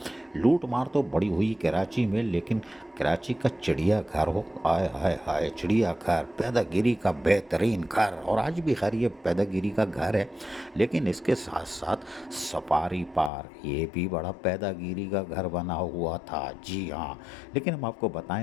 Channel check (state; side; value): drops out; right; at 13.3 s